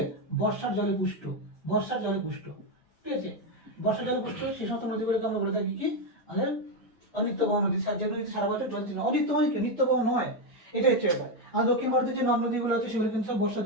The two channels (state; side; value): normal; both; correlation 0.07